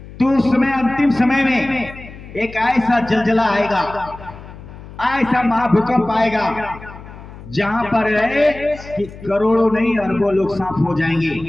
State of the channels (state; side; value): noise; left; hum, 16 dB below the sound